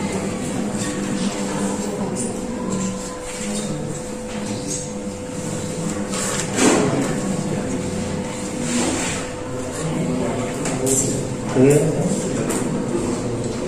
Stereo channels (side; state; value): both; identical; correlation 1.00